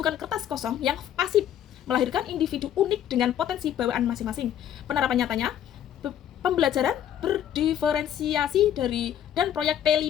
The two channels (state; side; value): quieter; right; 10.3 dB